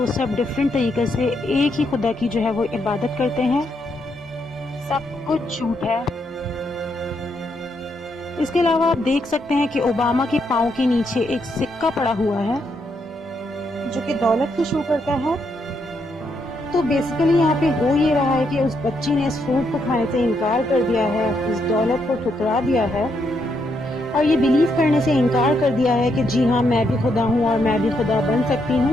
सब डिफरेंट तरीके से एक ही खुदा की जो है वो इबादत करते हैं, सब कुछ झूठ है। इसके अलावा आप देख सकते हैं कि ओबामा के पाँव के नीचे एक सिक्का पड़ा हुआ है जो कि दौलत को शो करता है। तो बेसिकली यहाँ पे हो ये रहा है कि उस बच्ची ने इस फ्रूट को खाने से इनकार कर दिया है, इस दौलत को ठुकरा दिया है और ये बिलीव करने से इनकार कर दिया है कि जी हाँ मैं भी खुदा हूँ और मैं भी खुदा बन सकती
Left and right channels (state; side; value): normal; both; correlation 0.78